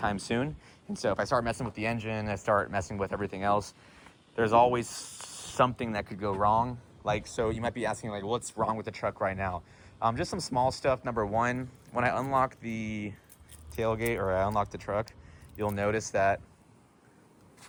soon. And so if I start messing with the engine, I start messing with everything else, there's always something that could go wrong. Like, so you might be asking, like, what's wrong with the truck right now? Just some small stuff. Number one, when I unlock the tailgate or I unlock the truck, you'll notice that,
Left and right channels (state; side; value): identical; both; correlation 1.00